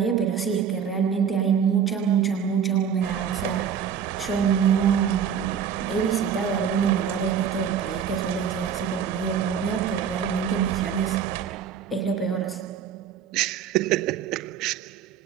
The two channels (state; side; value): quieter; left; 7.8 dB